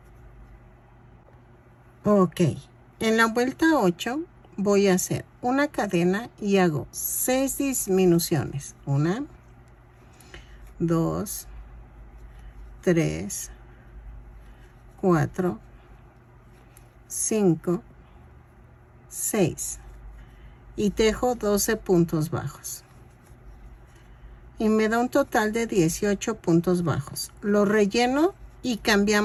Ok. En la vuelta 8 voy a hacer una cadena y hago 6 disminuciones. 1, 2, 3, 4, 5, 6. Y tejo 12 puntos bajos. Y me da un total de 18 puntos bajos. Lo relleno y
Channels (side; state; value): both; identical; correlation 1.00